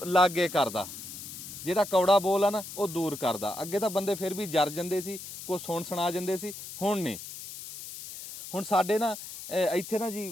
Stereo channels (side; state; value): left; noise; hiss, 11 dB below the sound